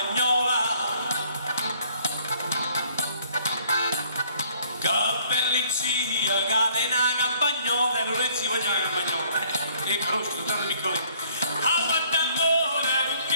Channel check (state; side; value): inverted; both; correlation -0.60